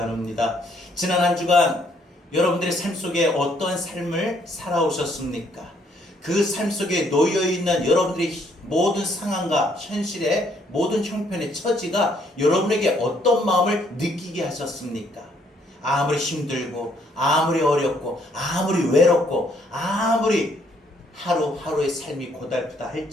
지난 한 주간 여러분들의 삶 속에 어떠한 삶을 살아오셨습니까? 그 삶 속에 놓여있는 여러분들의 모든 상황과 현실의 모든 형편의 처지가 여러분에게 어떤 마음을 느끼게 하셨습니까? 아무리 힘들고 아무리 어렵고 아무리 외롭고 아무리 하루하루의 삶이 고달프다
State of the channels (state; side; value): normal; both; correlation 0.68